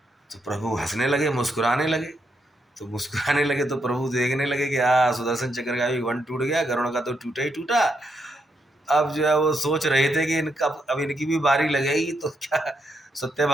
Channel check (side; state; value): both; normal; correlation 0.79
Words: तो प्रभु हंसने लगे, मुस्कुराने लगे, तो मुस्कुराने लगे तो प्रभु देखने लगे कि सुदर्शन चक्र का भी घमंड टूट गया, गरुड़ का तो टूटा ही टूटा। अब जो है वो सोच रहे थे कि इनका अब इनकी भी बारी लगेगी, तो क्या